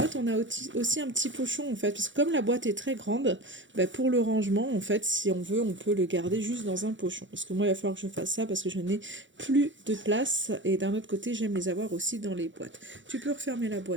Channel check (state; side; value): late; left; 0.55 ms